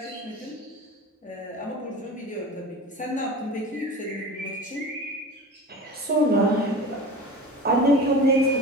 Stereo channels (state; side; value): normal; both; correlation 0.33